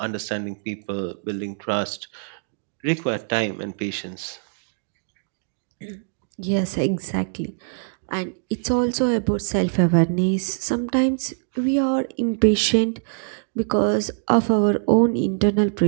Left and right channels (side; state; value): left; silent; digital silence